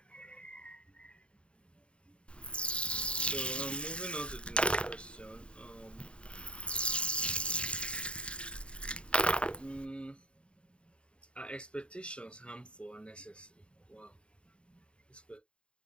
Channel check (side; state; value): right; late; 0.055 ms